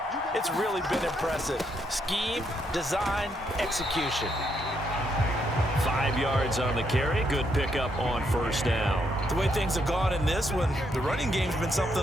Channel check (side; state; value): both; normal; correlation 0.76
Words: it's really been impressive. Scheme, design, execution. 5 yards on the carry. Good pickup on 1st down. The way things have gone in this one, the running game's been